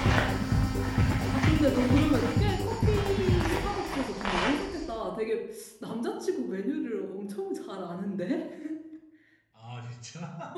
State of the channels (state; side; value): identical; both; correlation 1.00